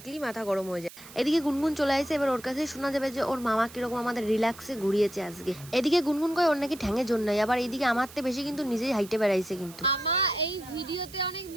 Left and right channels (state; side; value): noise; right; hiss, 18 dB below the sound